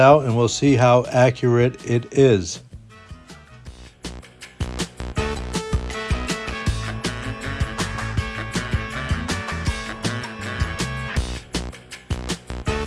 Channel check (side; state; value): both; identical; correlation 1.00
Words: and we'll see how accurate it is.